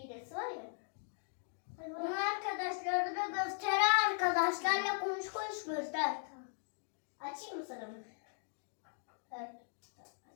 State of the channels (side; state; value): right; silent; digital silence